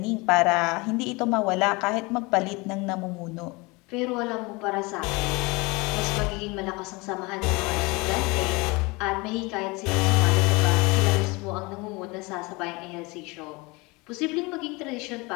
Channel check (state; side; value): quieter; right; 25.5 dB